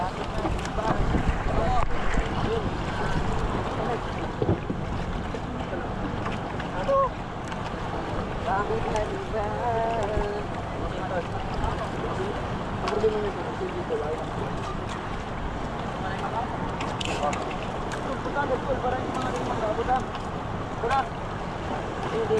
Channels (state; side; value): identical; both; correlation 1.00